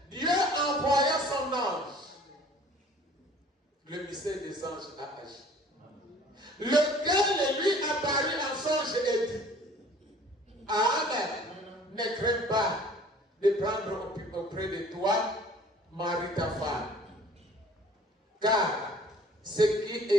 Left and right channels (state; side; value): normal; both; correlation 0.52